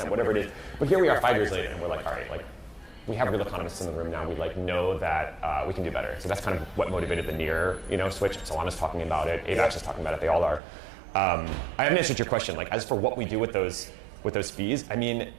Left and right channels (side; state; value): left; drops out; at 10.6 s